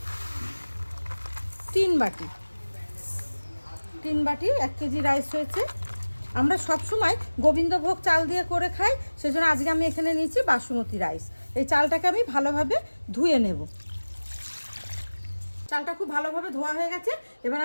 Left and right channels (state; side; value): inverted; both; correlation -1.00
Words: 3 বাটি। 3 বাটি 1 কেজি রাইস হয়েছে। আমরা সবসময় গোবিন্দভোগ চাল দিয়ে করে খাই, সেজন্য আজকে আমি এখানে নিয়েছি বাসমতি রাইস। এই চালটাকে আমি ভালোভাবে ধুয়ে নেব। চালটা খুব ভালোভাবে ধোয়া হয়ে গেছে। এবার